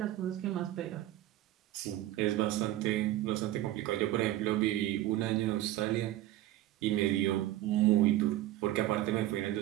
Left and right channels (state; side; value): quieter; left; 14.7 dB